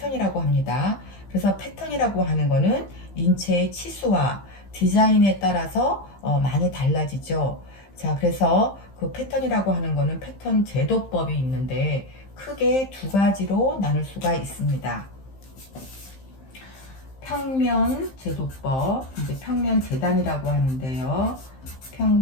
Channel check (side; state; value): right; late; 15 ms